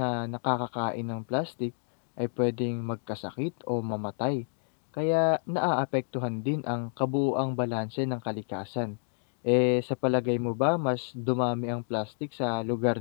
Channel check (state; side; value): silent; right; digital silence